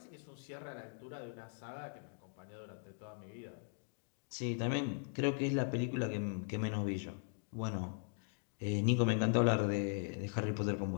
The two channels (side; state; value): right; silent; 51 dB below the other